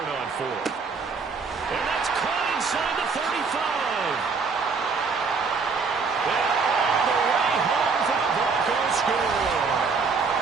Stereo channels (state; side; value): quieter; left; 4.9 dB